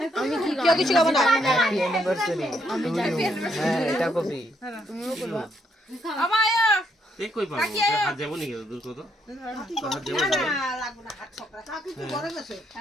আমি কি কেউ কিছু খাবো না হ্যাপি অ্যানিভার্সারি হ্যাঁ এটা কবি তুমিও করবা আমার আয়া এই কই পাবো হাত যাবো নাকি দূর কত হাত যাবো না লাগবো না হাত ছকরা কাকি কি করে গেছে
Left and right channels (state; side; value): normal; both; correlation 0.74